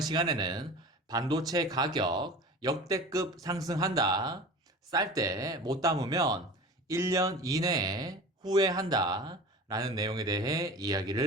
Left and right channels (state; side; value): normal; both; correlation 0.36